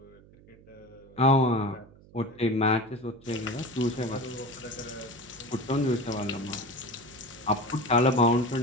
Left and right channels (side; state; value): right; noise; hum, 24 dB below the sound